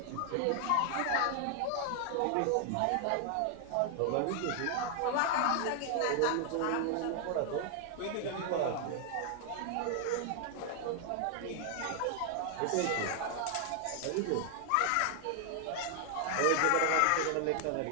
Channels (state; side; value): different; both; correlation 0.00